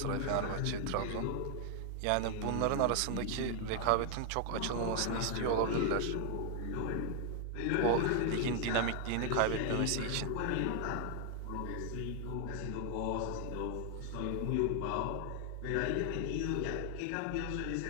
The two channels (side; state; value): both; different; correlation 0.00